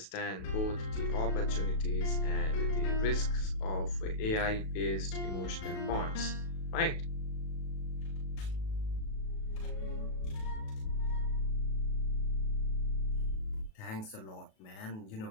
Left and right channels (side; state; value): right; late; 37 ms